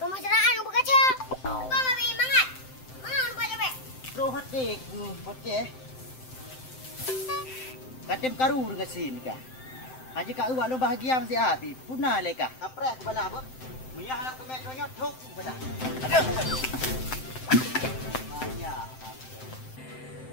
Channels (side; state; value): right; late; 7.7 ms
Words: berkaca. Bang ambil mangat. Mangat lupa cepet. Roh hati ku bocah. Katem karu dengan sin kah. Haji kak uak lo bahagia mesti api. Punah leka. Apres bala apa? Mia halang ke metronya tok bala. Aduh. Banyak.